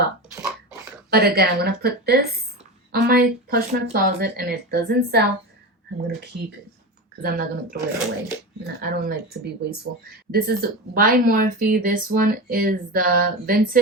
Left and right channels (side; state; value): both; normal; correlation 0.24